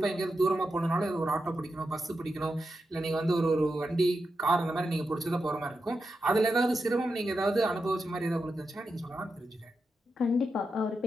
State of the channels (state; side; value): normal; both; correlation 0.88